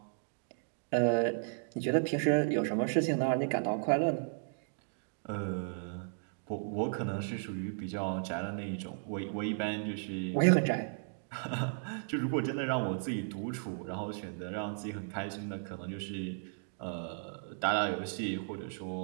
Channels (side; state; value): left; silent; digital silence